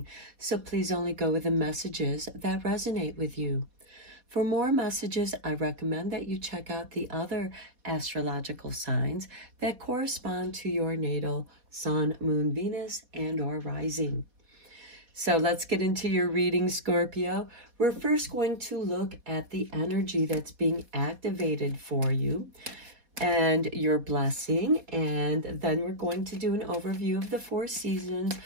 So please only go with the messages that resonate with you. For more messages, I recommend that you check out the other astrological signs that correspond to your natal Sun, Moon, Venus, and or Rising. So let's get into your reading, Scorpio. We're first going to look at the energy that's being activated for you and your blessing. And then we're going to do an overview of the 4 seasons,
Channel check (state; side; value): late; left; 4.2 ms